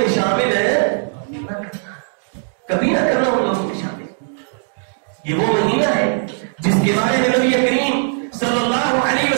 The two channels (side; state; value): left; silent; digital silence